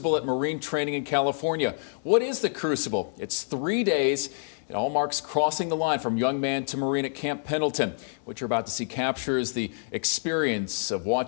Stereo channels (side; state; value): right; silent; digital silence